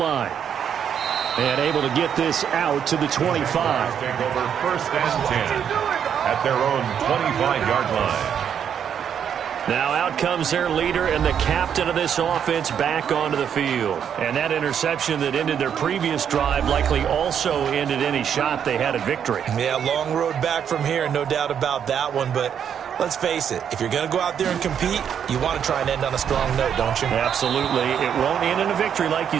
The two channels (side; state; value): left; quieter; 8.4 dB